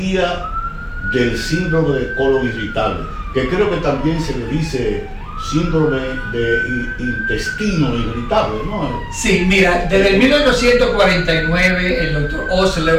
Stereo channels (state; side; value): identical; both; correlation 1.00